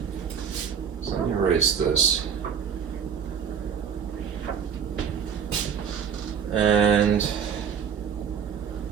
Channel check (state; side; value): quieter; left; 7.4 dB